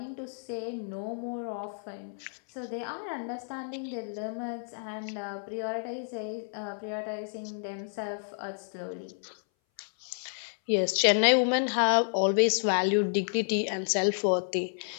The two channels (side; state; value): right; silent; 57 dB below the other